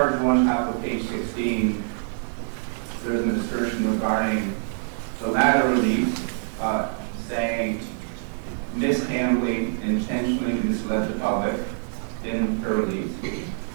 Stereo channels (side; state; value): left; silent; digital silence